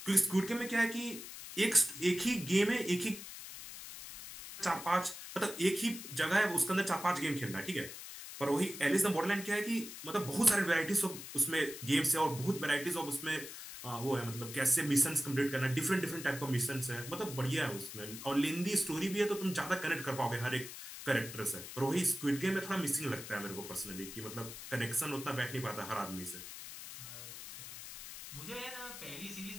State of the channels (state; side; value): noise; left; hiss, 11 dB below the sound